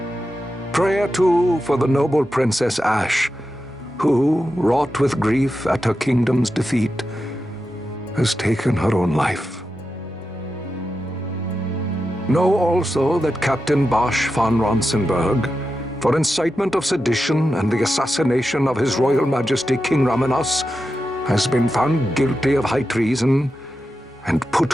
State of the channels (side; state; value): both; normal; correlation 0.90